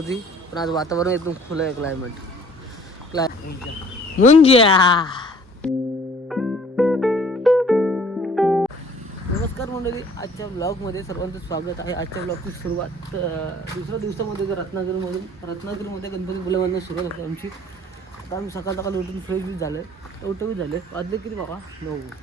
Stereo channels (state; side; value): normal; both; correlation 0.54